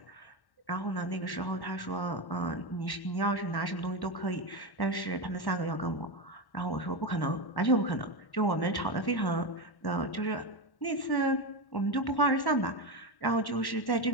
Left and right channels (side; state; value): right; late; 1.1 ms